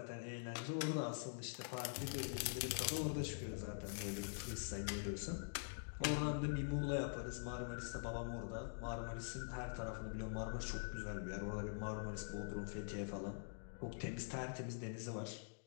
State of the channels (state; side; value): silent; right; digital silence